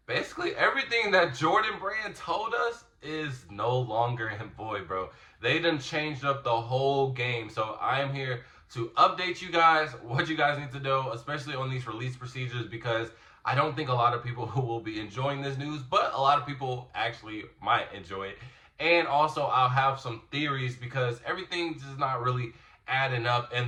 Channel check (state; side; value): identical; both; correlation 1.00